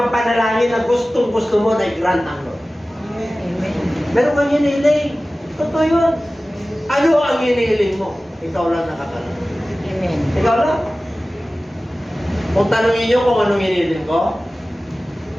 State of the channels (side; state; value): both; normal; correlation 0.97